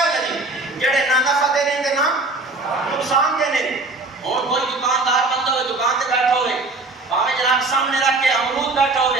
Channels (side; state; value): left; quieter; 3.2 dB